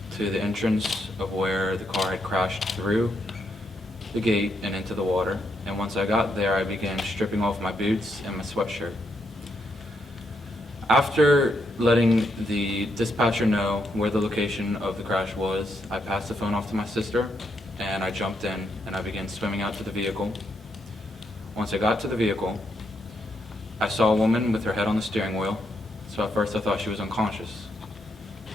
to the entrance of where the car had crashed through the gate and into the water. And once I got there, I began stripping off my boots and my sweatshirt. After letting the dispatcher know where the location of the crash was, I passed the phone off to my sister, and I jumped in and I began swimming out to the vehicle. Once I got to the vehicle, I saw a woman with her head on the steering wheel, so at first I thought she was unconscious.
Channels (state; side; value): normal; both; correlation 0.79